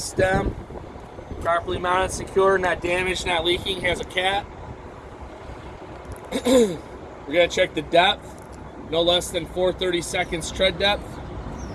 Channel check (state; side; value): identical; both; correlation 1.00